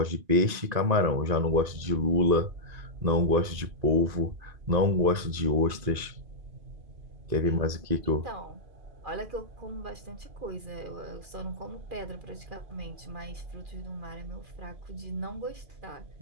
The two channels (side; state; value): left; late; 2.5 ms